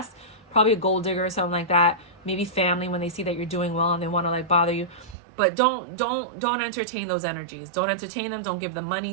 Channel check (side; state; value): left; drops out; at 5.2 s